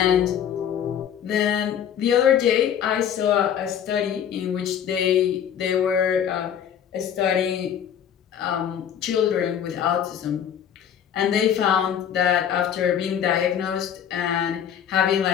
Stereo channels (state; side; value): quieter; right; 9.0 dB